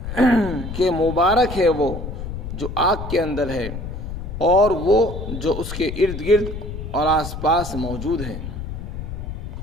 کہ مبارک ہے وہ جو آگ کے اندر ہے اور وہ جو اس کے ارد گرد اور آس پاس موجود ہیں،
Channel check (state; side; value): noise; left; rumble, 7 dB below the sound